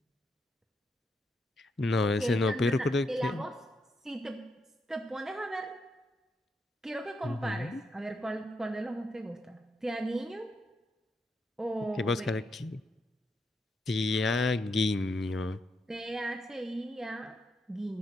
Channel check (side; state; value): both; normal; correlation 0.80